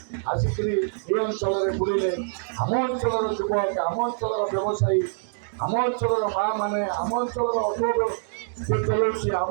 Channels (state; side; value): silent; left; digital silence